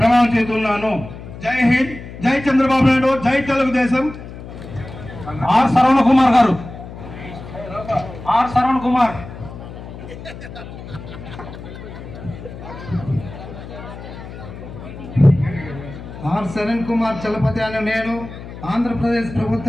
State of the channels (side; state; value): left; noise; hum, 13 dB below the sound